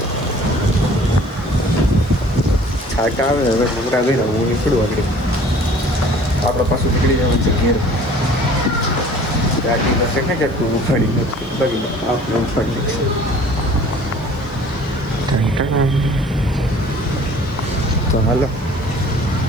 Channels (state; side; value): noise; right; hiss, 29 dB below the sound